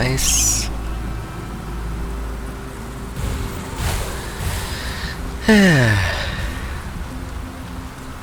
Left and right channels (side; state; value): both; identical; correlation 1.00